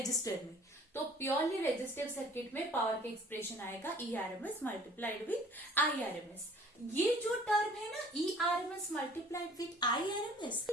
में. तो प्योरली रेजिस्टिव सर्किट में पावर का एक्सप्रेशन आएगा ERMS मल्टीप्लाइड विथ IRMS. ये जो टर्म है ना ERMS multiplied with IRMS,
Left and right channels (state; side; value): normal; both; correlation 0.52